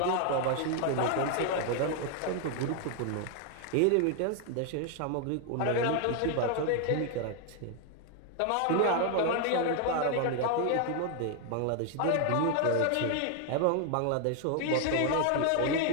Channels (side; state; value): both; different; correlation 0.00